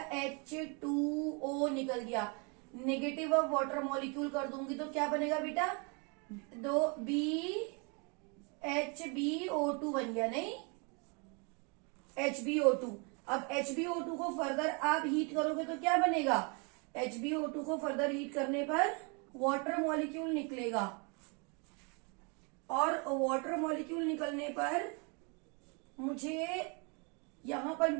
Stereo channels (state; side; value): quieter; left; 33.7 dB